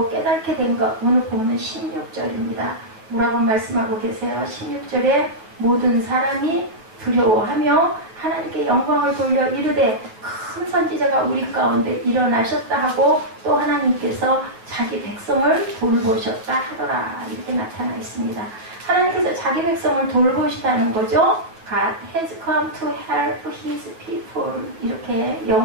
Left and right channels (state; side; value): late; left; 9.1 ms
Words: 깨닫게 된 것 오늘 보면 16절입니다. 뭐라고 말씀하고 계세요? 16절에 모든 사람이 두려워하며 하나님께 영광을 돌려 이르되 큰 선지자가 우리 가운데 일어나셨다 하고 또 하나님께서 자기 백성을 돌보셨다 하더라 이렇게 나타나 있습니다. 하나님께서 자기 백성을 돌보시다는 거죠. God has come to help his people 이렇게